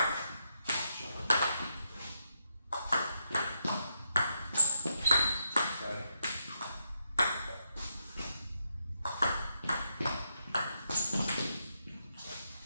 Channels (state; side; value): inverted; both; correlation -0.82